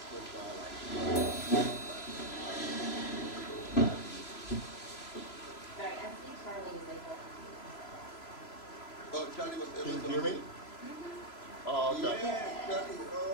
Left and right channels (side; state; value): right; late; 3.0 ms